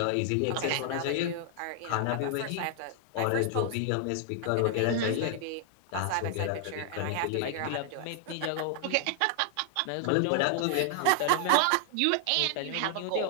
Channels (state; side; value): different; both; correlation 0.00